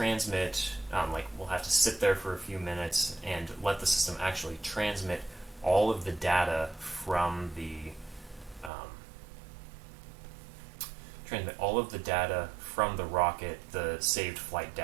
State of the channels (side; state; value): left; drops out; at 8.7 s